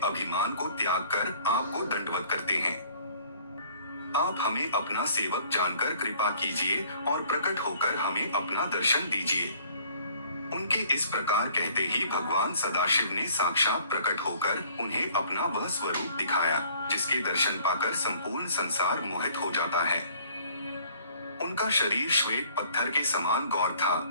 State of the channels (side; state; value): both; inverted; correlation -0.56